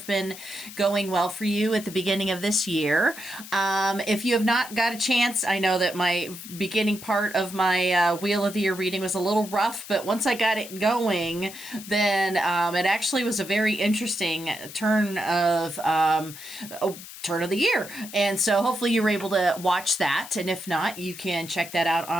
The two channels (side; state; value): left; noise; hiss, 14 dB below the sound